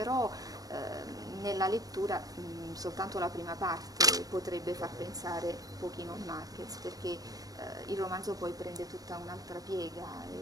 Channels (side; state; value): left; late; 0.18 ms